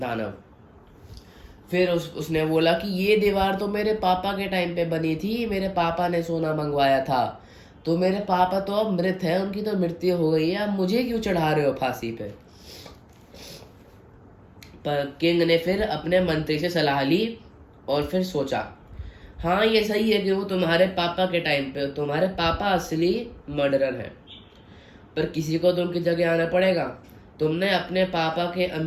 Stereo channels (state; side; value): identical; both; correlation 1.00